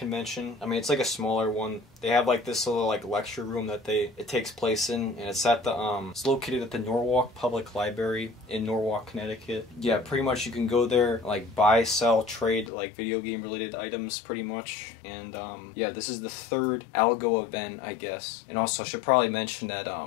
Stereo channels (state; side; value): drops out; right; at 12.7 s